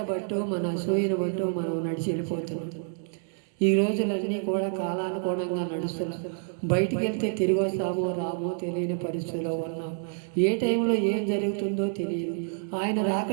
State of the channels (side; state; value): left; silent; digital silence